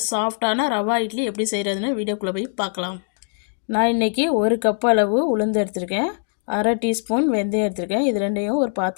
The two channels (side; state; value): right; silent; digital silence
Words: சாஃப்டான ரவா இட்லி எப்படி செய்கிறதுன்னு வீடியோக்குள்ளே போய் பார்க்கலாம். நான் இன்றைக்கி 1 கப் அளவு உளுந்து எடுத்திருக்கேன், 1/2 டீஸ்பூன் வெந்தயம் எடுத்திருக்கேன். இது ரெண்டையும் ஒரு